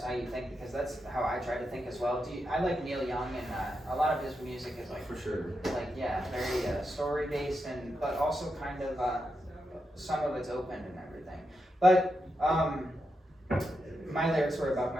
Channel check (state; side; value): normal; both; correlation 0.86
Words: how you think, because that's how I try to think as well. I like Neil Young, and a lot of his music is like For sure. like very story based, and but also kind of some of it's open and everything. But my lyrics were about